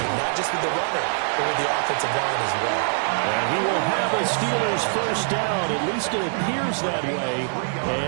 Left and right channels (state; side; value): silent; left; digital silence